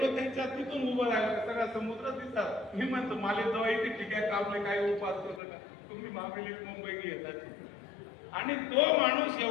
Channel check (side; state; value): right; drops out; at 5.4 s